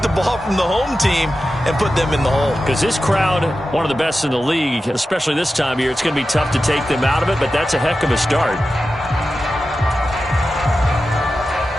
the ball from the home team and put them in the hole. Because this crowd, one of the best in the league, especially this time of year, it's going to be tough to take them out of it, but that's a heck of a start.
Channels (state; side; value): normal; both; correlation 0.93